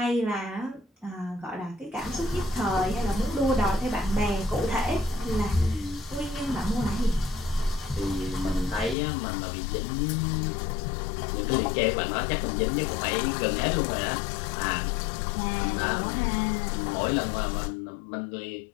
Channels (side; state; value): right; drops out; at 9.0 s